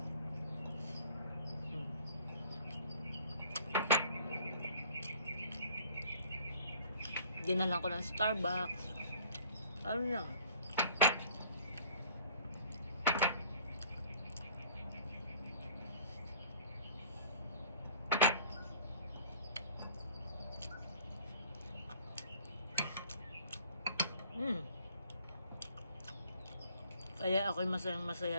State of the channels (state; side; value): inverted; both; correlation -0.52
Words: Dinalan ko ng Starbucks. Ano lang, kaya ako'y masayang masaya